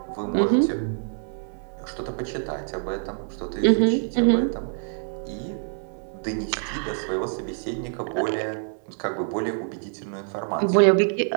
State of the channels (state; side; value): silent; left; digital silence